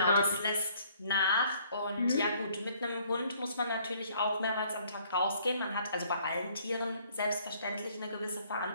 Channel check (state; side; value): inverted; both; correlation -0.62